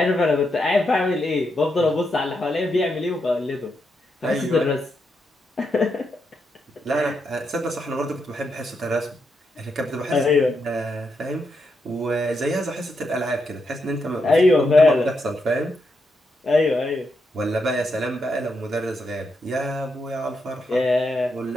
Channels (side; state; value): both; normal; correlation 0.82